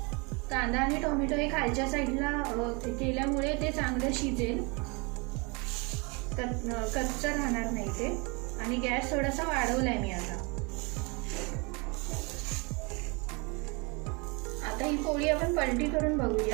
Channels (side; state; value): left; quieter; 30.0 dB